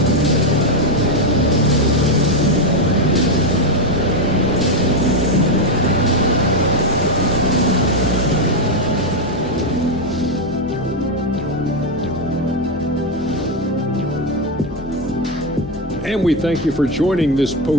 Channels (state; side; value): normal; both; correlation 0.06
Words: And we thank you for joining this